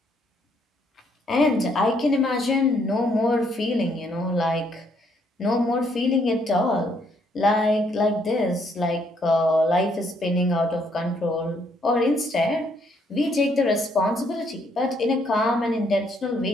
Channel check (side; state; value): both; normal; correlation 0.70